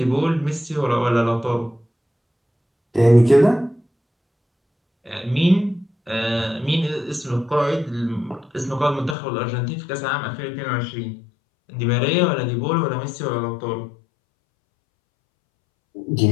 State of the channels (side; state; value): right; drops out; at 9.2 s